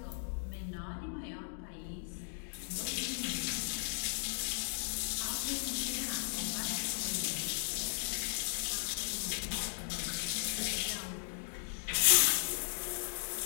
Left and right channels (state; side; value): silent; right; digital silence